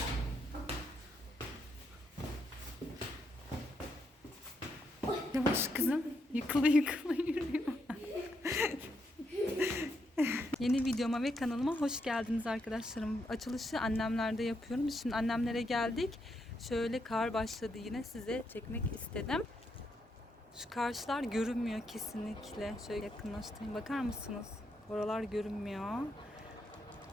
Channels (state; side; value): normal; both; correlation 0.79